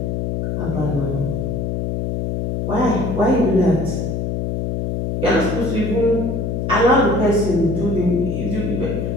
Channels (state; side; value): noise; left; hum, 1 dB below the sound